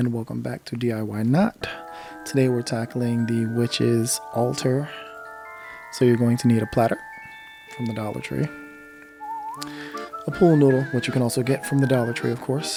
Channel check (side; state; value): both; identical; correlation 1.00